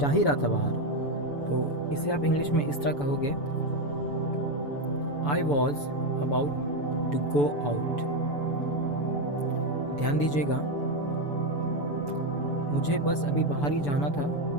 ही रहा था बाहर, तो इसे आप इंग्लिश में इस तरह कहोगे, I was about to go out. ध्यान दीजिएगा, मुझे बस अभी बाहर ही जाना था,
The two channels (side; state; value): right; late; 7.0 ms